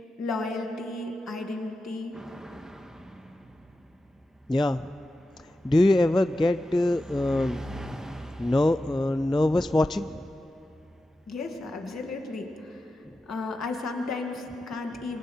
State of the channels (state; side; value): normal; both; correlation 0.91